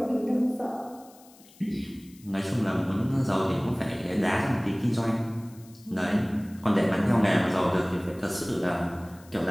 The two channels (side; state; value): left; noise; hiss, 25 dB below the sound